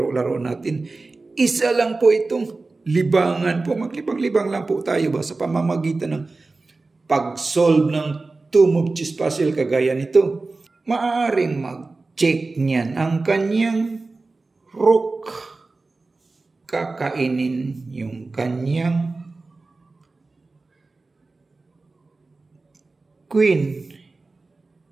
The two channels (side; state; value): left; quieter; 3.6 dB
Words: natin. Isa lang po itong libangan po. Maglibang-libang lang po tayo ba sa pamamagitan ng pag-solve ng two-move chess puzzle kagaya nito. Maaaring mag-check niyan ang kanyang rook. Kakainin yung kanyang queen.